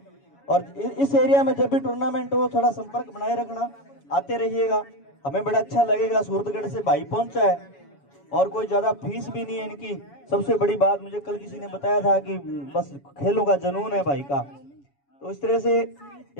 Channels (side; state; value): right; late; 7.1 ms